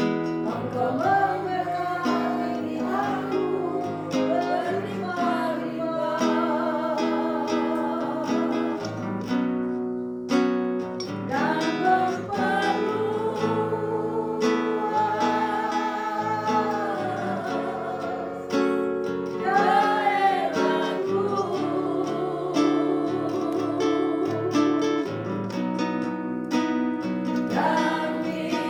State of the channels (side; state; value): both; identical; correlation 1.00